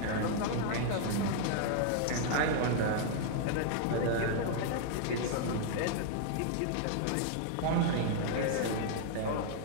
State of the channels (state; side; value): different; both; correlation 0.00